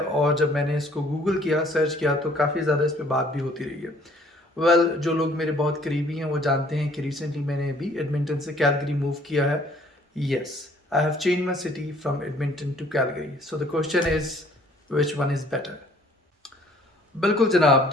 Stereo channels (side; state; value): both; normal; correlation 0.58